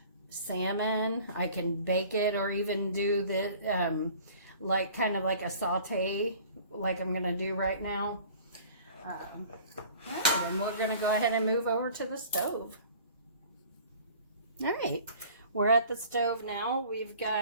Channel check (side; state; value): both; inverted; correlation -0.47